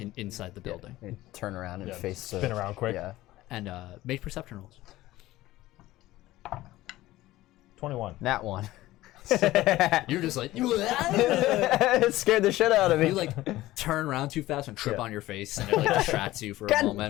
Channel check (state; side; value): quieter; right; 16.7 dB